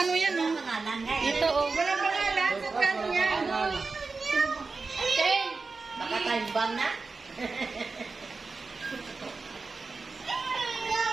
yan, oh. Pangalan nga eh. Ito oh. Walang pangalan. Sa kano yan? Okay. Baka kalbang na.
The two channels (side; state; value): left; quieter; 4.1 dB